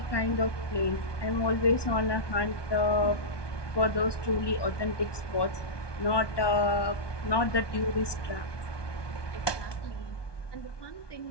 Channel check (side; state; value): right; late; 1.2 ms